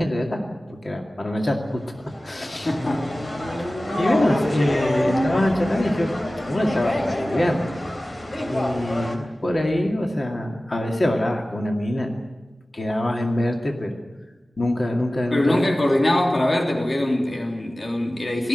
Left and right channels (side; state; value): both; normal; correlation 0.97